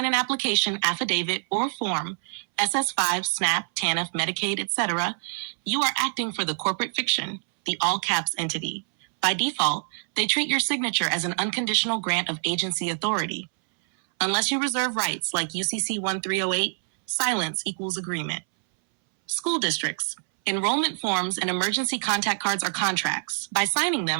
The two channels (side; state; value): left; silent; 61 dB below the other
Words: an application, affidavit, or form, SS5, SNAP, TANF, Medicaid, etc., you are acting for the corporate fiction, the all-caps entity. By default, they treat your signature as an unconditional grant of agency authority. Unless you reserve rights like UCC 1308, silence equals agreement. School districts. Enrollment forms and emergency contact cards are contracts. By signing